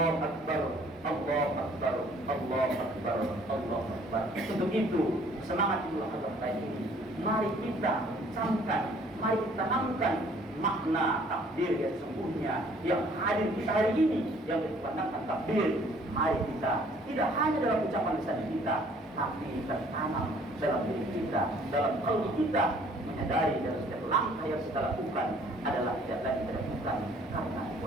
Akbar, Allah Akbar, Allah Akbar, Allah Akbar. Untuk itu semangat Idul Adha ini mari kita camkan, mari kita tanamkan makna takbir yang sesungguhnya yang hadir kita hari ini, yang dipandangkan takbir. Mari kita tidak hanya dalam ucapan lisan kita, tapi tertanam dalam diri kita, dalam qalbi kita, menyadari dari setiap langkah yang kita lakukan adalah tidak lain tidak bukan karena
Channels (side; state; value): both; normal; correlation 0.58